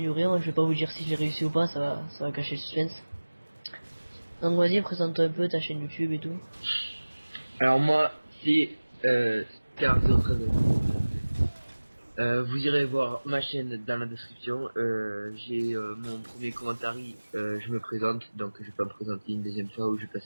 Je vais pas vous dire si j'ai réussi ou pas, ça va cacher le suspense. Donc vas-y, présente-toi un peu ta chaîne YouTube et tout. Alors moi, c'est Scar013. Vous irez voir ma chaîne dans la description. J'ai mon premier commentaire. Je me présente, donc je vais pas me présenter une deuxième fois où je vais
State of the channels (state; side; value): inverted; both; correlation -1.00